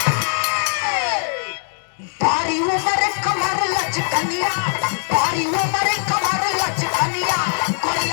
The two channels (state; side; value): silent; right; 61 dB below the other